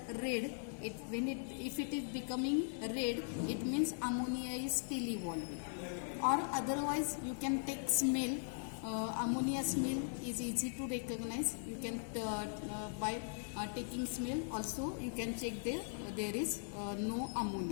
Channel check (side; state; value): right; silent; 51 dB below the other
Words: red, if it is becoming red, it means ammonia is still evolving. Or otherwise you can take smell. Ammonia smell is easy to recognize. You can by taking smell also you can check there is no